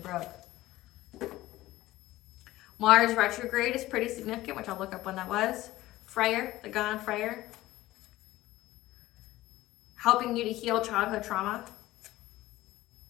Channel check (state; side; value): quieter; right; 16.7 dB